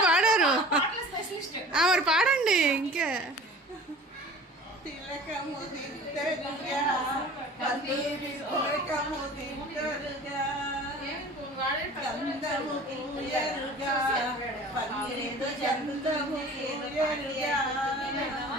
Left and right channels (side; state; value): both; normal; correlation 0.43